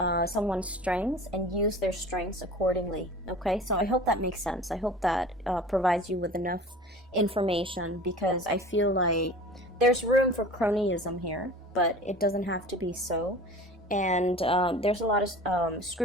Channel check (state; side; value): normal; both; correlation 0.40